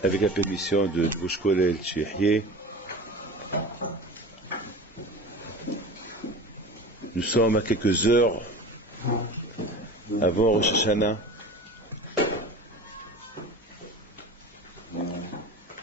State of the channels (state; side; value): normal; both; correlation 0.35